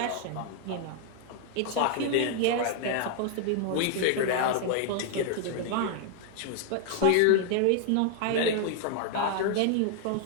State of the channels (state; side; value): different; both; correlation 0.00